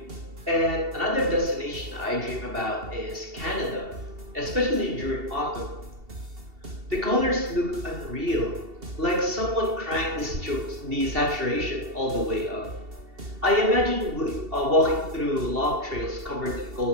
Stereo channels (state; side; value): late; left; 2.7 ms